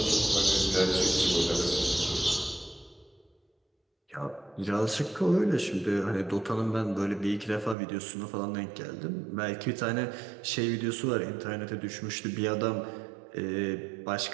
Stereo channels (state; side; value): drops out; left; at 7.8 s